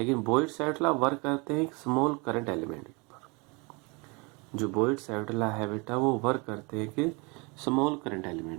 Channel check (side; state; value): left; quieter; 29.1 dB